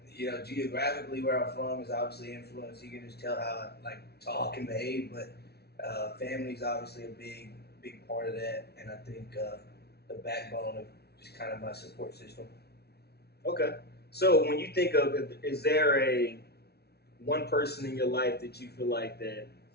You know, geographically where I'm from is obviously influenced. You can just tell how I like talk and behave, but family's obviously a big part of that, and I think the backbone of just kind of my support system. Okay. So when you think of, is there a one person in your life that you feel like that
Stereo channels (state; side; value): late; right; 0.47 ms